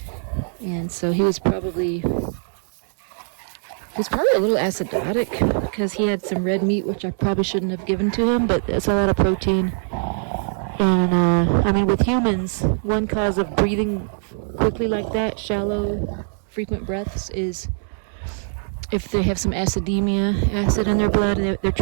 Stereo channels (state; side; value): silent; left; digital silence